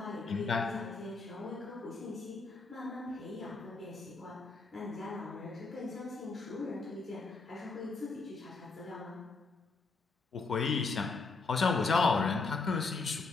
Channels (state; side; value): quieter; right; 4.0 dB